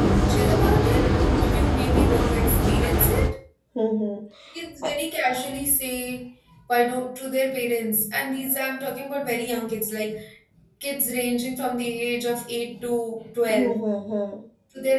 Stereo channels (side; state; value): both; identical; correlation 1.00